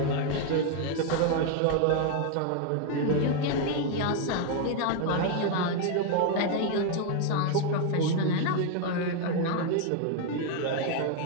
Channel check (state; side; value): different; both; correlation 0.01